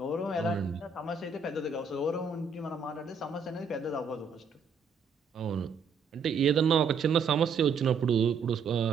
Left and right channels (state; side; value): quieter; left; 5.2 dB